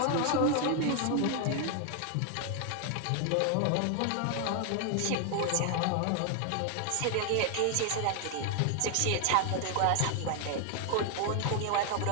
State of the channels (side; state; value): both; different; correlation 0.00